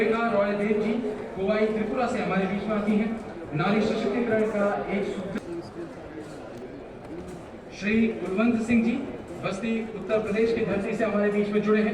रॉयदेव जी कोवाई त्रिपुरा से हमारे बीच में आती हैं। नारी सशक्तिकरण का एक सूत्र। श्री कुलवंत सिंह जी बस्ती उत्तर प्रदेश की धरती से हमारे बीच में जुड़े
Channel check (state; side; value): identical; both; correlation 1.00